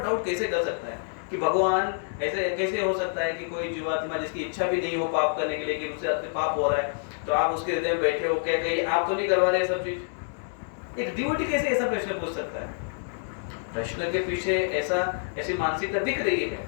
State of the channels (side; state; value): right; silent; digital silence